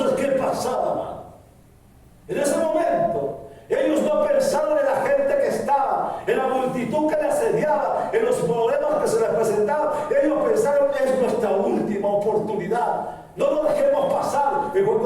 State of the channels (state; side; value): identical; both; correlation 1.00